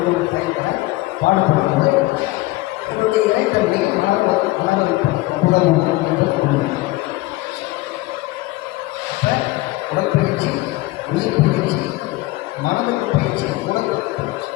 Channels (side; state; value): right; quieter; 19.8 dB